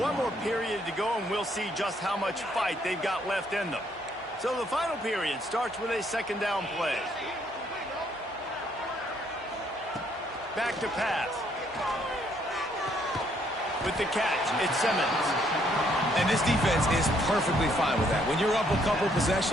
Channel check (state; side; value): normal; both; correlation 0.69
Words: more period to go, and we'll see just how much fight they've got left in them. So the final period starts with a second down play. Back to pass. With the catch, it's Simmons. And this defense is perfectly fine with that. When you're up a couple